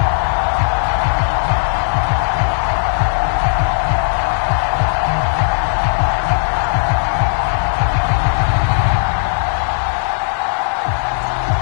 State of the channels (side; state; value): right; silent; digital silence